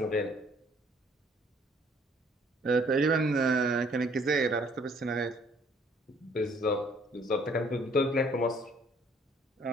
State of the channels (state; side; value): normal; both; correlation 0.61